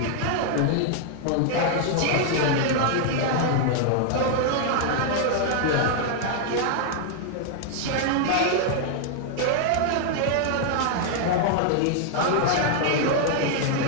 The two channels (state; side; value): different; both; correlation 0.00